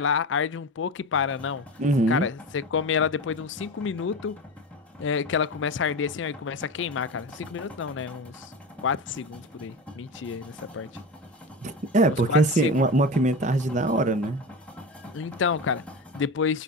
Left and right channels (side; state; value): both; normal; correlation 0.25